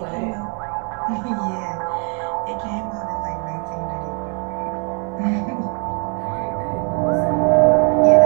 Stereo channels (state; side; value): quieter; left; 37.5 dB